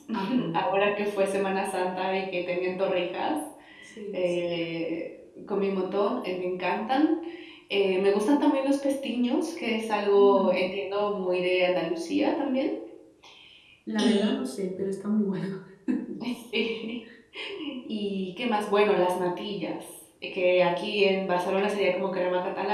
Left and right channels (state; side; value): identical; both; correlation 1.00